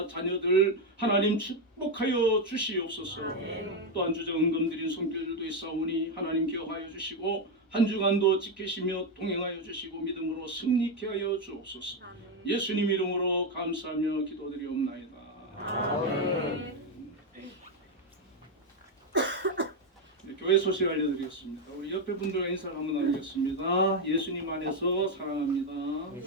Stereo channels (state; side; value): normal; both; correlation 0.06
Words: 자녀들 하나님 축복하여 주시옵소서. 또한 주저 은금 드린 손길들도 있사오니 하나님 기억하여 주시고 한 주간도 지키시며 동행하여 주시고 믿음으로 승리케 하여 주옵소서. 예수님 이름으로 감사하며 기도드리옵나이다. 아멘. 네, 교회 소식 알려드리겠습니다. 우리 옆에 분들과 인사를 한번 나누겠습니다. 예수님 안에서 사랑합니다.